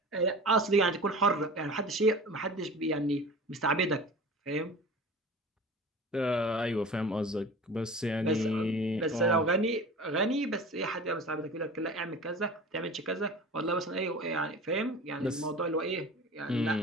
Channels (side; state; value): both; normal; correlation 0.38